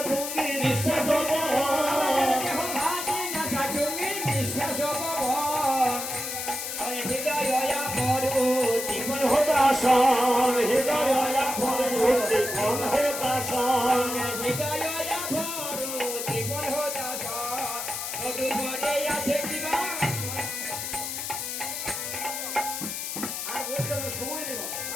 হৃদয় সময় নেই বাবা।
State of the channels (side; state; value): left; noise; hiss, 5 dB below the sound